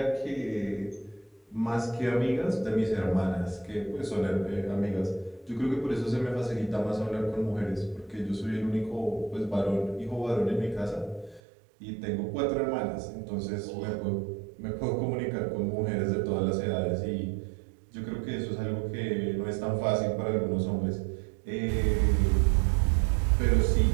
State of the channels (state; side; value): drops out; left; at 11.4 s